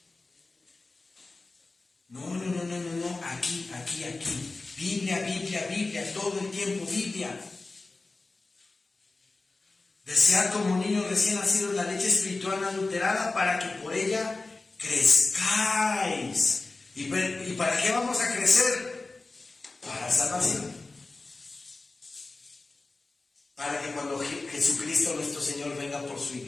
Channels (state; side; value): quieter; right; 3.4 dB